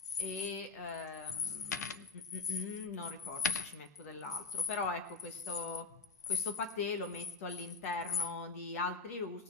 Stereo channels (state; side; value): quieter; right; 4.5 dB